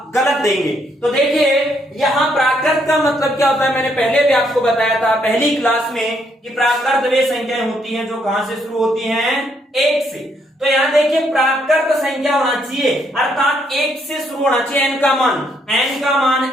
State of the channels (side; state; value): both; normal; correlation 0.72